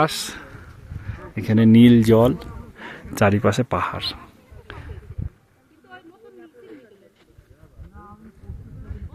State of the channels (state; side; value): identical; both; correlation 1.00